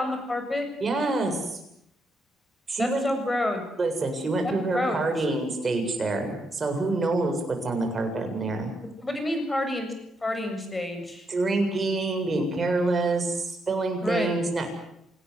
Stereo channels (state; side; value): normal; both; correlation 0.79